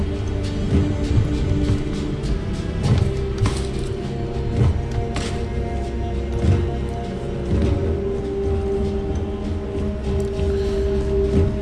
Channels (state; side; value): identical; both; correlation 1.00